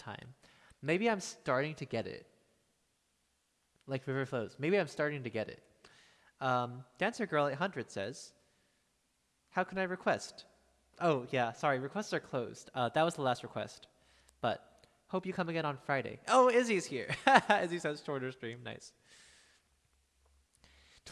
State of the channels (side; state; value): both; identical; correlation 1.00